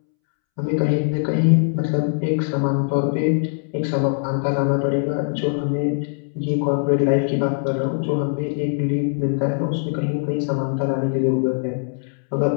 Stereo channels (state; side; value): silent; right; 65 dB below the other